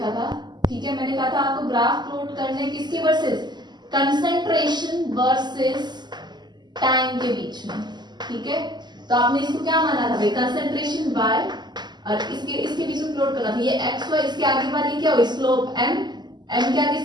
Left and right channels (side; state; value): left; late; 0.21 ms